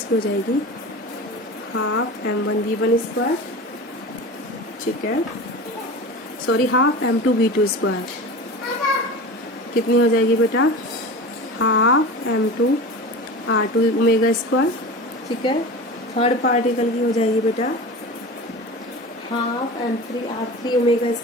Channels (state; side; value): normal; both; correlation 0.32